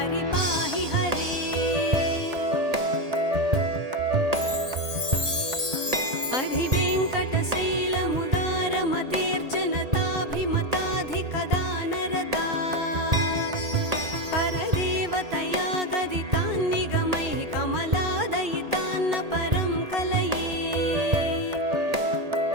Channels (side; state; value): left; late; 1.8 ms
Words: हरे। अधिवेङ्कटशैलमुदारमतेर्जनताभिमताधिकदानरता परदेवतया गदितान्निगमैः कमलादयितान्न परं कलये।